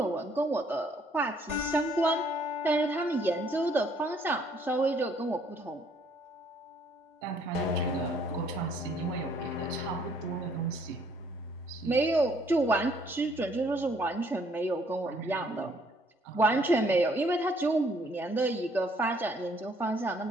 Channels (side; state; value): both; normal; correlation 0.64